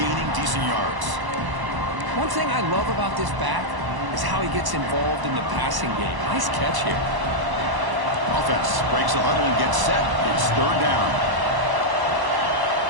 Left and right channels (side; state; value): left; late; 1.0 ms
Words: decent yards. One thing I love about this back is how he gets involved in the passing game. Nice catch here. Offense breaks the huddle and gets set. It's third down.